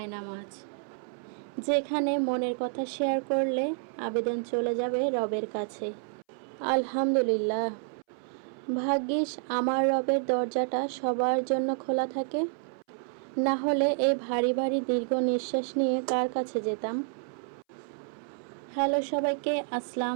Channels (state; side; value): silent; left; 58 dB below the other